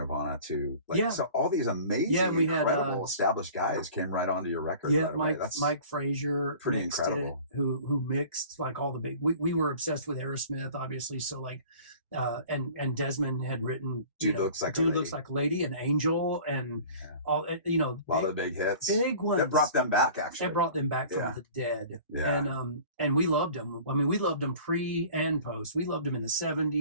to so all these amazing, incredible established guys came right onto your record. Yeah, Mike Frazier, pretty incredible. Who mixed like all the big. We were obsessed with Aerosmith, obviously. So like, and Desmond had written Dude Looks Like a Lady, and Angel, and all a lot of big hits, big ones. That brought them back. Actually, it brought them back from the dead. Yeah. And we loved them. I mean, we loved them pre and post. We loved them in the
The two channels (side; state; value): both; inverted; correlation -0.45